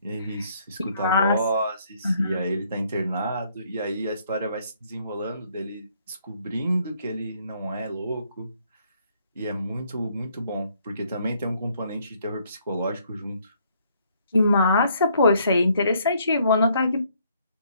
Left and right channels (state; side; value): inverted; both; correlation -0.67